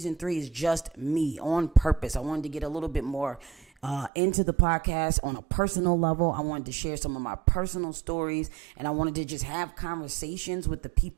3 is just me on purpose. I wanted to get a little bit more into the podcast on a personal level. I wanted to share some of my personal stories, and I wanted to just have conversations with the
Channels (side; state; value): left; drops out; at 4.1 s